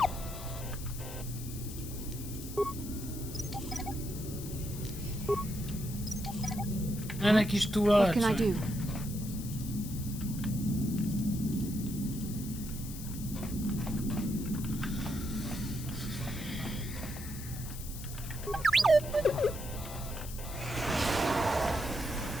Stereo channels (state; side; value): noise; left; hiss, 12 dB below the sound